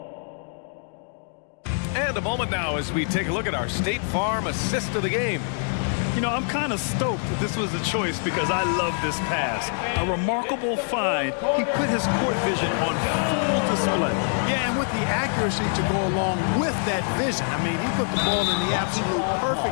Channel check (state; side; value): silent; right; 62 dB below the other